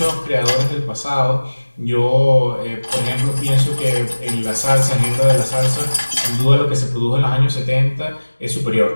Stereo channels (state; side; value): inverted; both; correlation -1.00